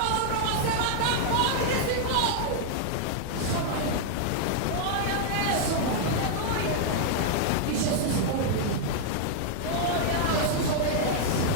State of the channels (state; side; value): different; both; correlation -0.01